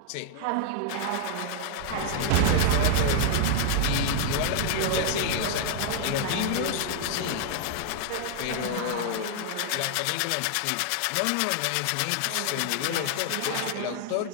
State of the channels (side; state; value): both; different; correlation 0.00